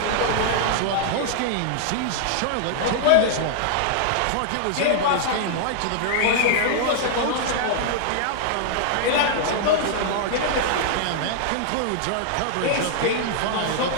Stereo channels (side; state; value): both; different; correlation -0.01